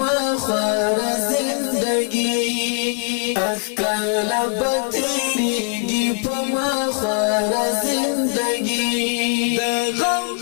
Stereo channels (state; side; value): quieter; right; 39.2 dB